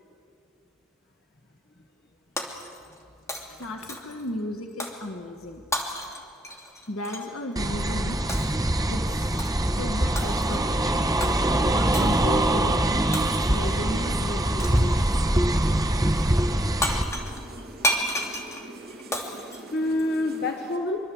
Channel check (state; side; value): normal; both; correlation 0.73